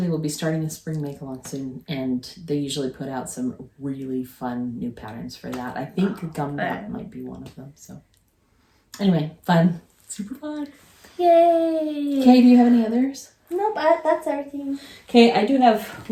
they will be starting a spring make-along soon. And they usually put out some really fun new patterns for that. I think Gumdrop might be one of them. So anyway, fun. Super fun. Yay. Okay, do you have any others? Nope, that's everything. Okay, I do have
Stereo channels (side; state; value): both; identical; correlation 1.00